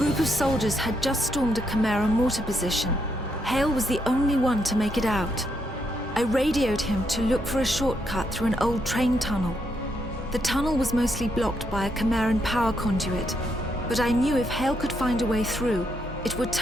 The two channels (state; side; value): normal; both; correlation 0.78